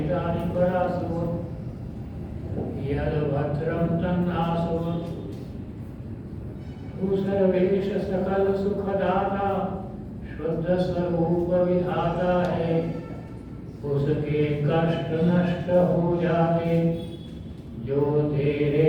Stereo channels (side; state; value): both; identical; correlation 1.00